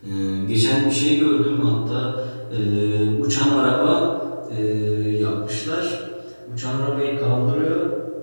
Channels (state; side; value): inverted; both; correlation -1.00